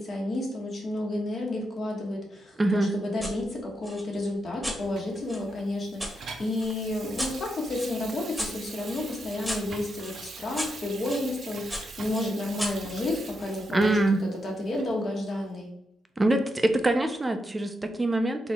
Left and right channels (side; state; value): both; normal; correlation 0.84